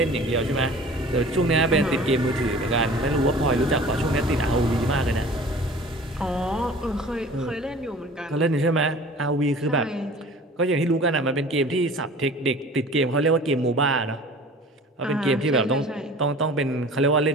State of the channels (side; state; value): both; normal; correlation 0.44